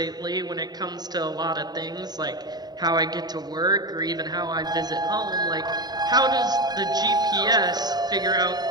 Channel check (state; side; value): late; left; 0.20 ms